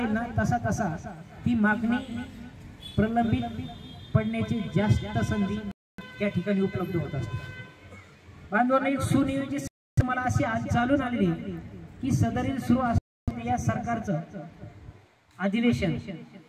ना तसा तसा ती मागणी प्रलंबित पडण्याची जास्त संधी त्या ठिकाणी उपलब्ध होत असते. बांधवांना एक सुनियोजित मला अशी आज चालून आलेली की सदरील सुरू असलेल्या या सरकारचं अधिवेशन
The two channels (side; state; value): both; identical; correlation 1.00